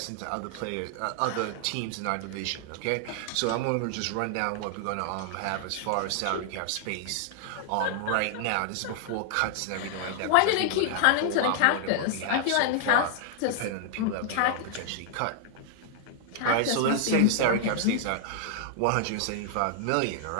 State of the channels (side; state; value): both; different; correlation 0.00